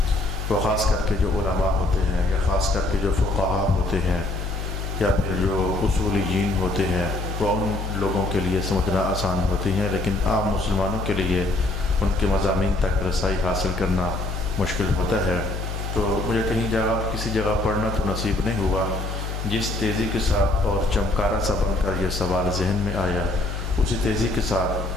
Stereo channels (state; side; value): noise; left; hum, 5 dB below the sound